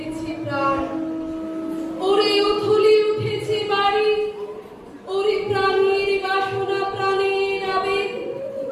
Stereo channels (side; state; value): both; identical; correlation 1.00